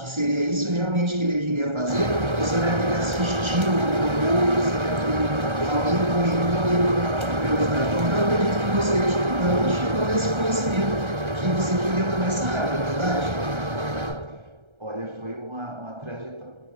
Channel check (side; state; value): left; late; 1.3 ms